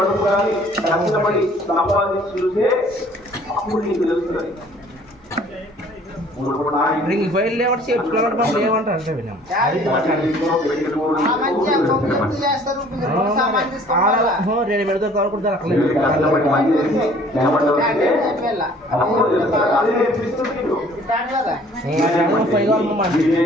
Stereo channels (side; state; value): both; normal; correlation 0.54